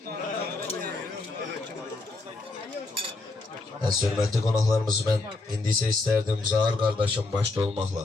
Əziz, hörmətli qonaqlarımız, mən indi isə istərdim Zahar qardaşım başda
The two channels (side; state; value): right; quieter; 3.3 dB